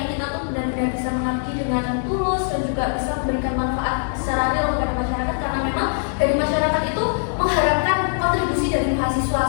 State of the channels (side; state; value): right; silent; digital silence